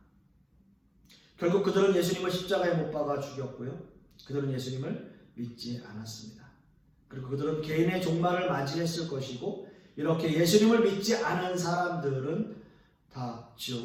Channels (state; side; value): identical; both; correlation 1.00